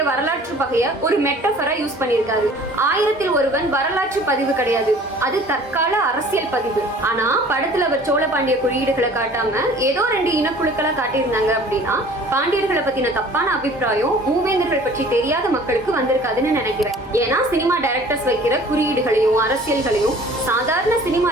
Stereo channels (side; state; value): both; normal; correlation 0.49